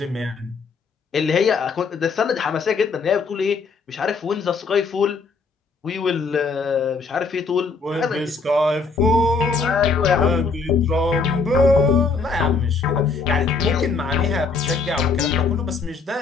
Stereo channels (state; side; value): quieter; right; 4.6 dB